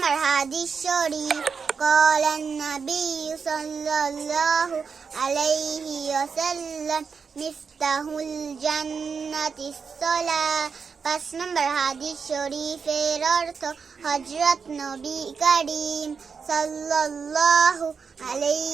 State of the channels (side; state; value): left; quieter; 5.7 dB